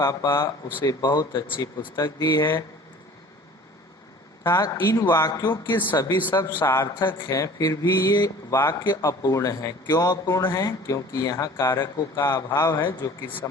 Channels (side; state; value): both; normal; correlation 0.46